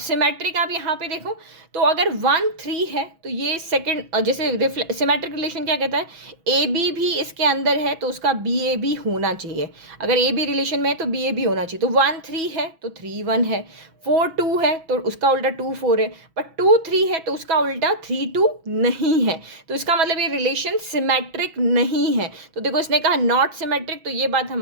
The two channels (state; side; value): late; left; 6.2 ms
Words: आप यहाँ पे देखो, तो अगर 1 3 है तो ये सेकंड, जैसे सिमेट्रिक रिलेशन क्या कहता है, ए बी भी इसके अंदर है तो उसका बी ए बी होना चाहिए। अगर ए बी रिलेशन में है तो बी ए बी होना चाहिए। तो 1 3 है तो 3 1 है, 4 2 है तो उसका उल्टा 2 4 है, बट 2 3 है तो उसका उल्टा 3 2 नहीं है। तो इसका मतलब ये रिलेशन सिमेट्रिक नहीं है। तो देखो, इसने कहा नॉट सिमेट्रिक, तो ये बात